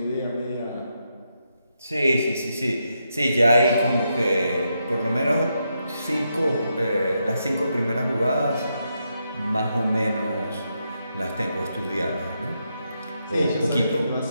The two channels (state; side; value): inverted; both; correlation -0.82